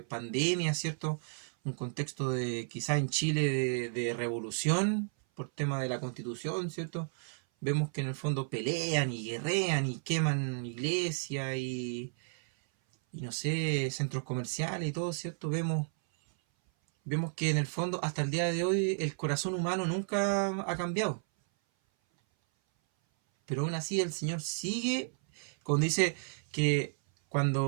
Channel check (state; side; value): silent; left; 56 dB below the other